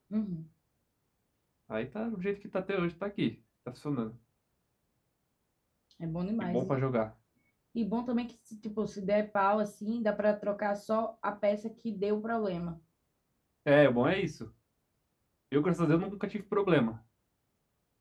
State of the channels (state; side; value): identical; both; correlation 1.00